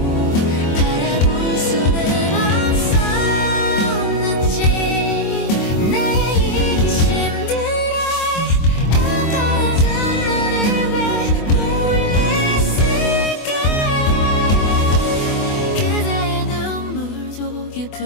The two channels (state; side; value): late; right; 24 ms